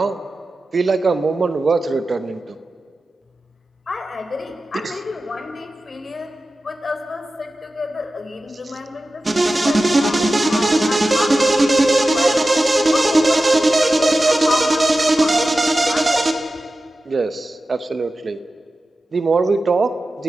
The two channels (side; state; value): both; normal; correlation 0.94